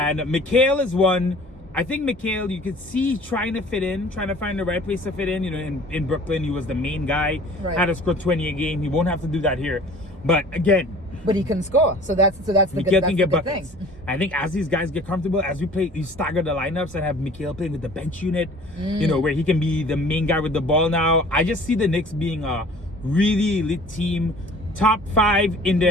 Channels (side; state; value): both; normal; correlation 0.48